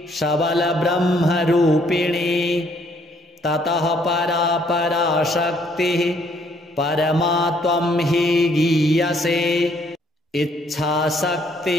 सबलब्रह्मरूपिणी ततः परा पराशक्तिः परमा त्वं हि गीयसे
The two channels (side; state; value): both; normal; correlation 0.66